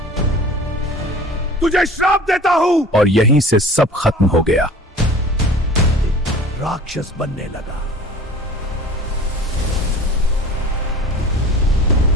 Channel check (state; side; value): normal; both; correlation 0.42